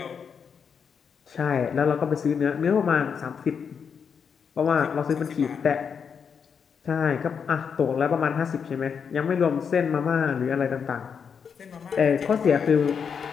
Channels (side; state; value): right; quieter; 6.6 dB